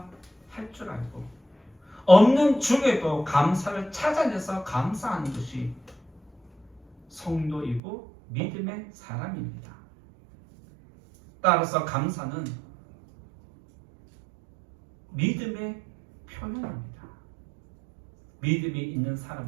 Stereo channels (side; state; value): left; drops out; at 7.8 s